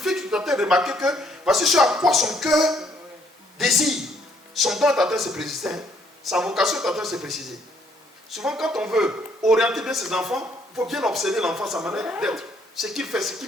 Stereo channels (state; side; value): normal; both; correlation 0.67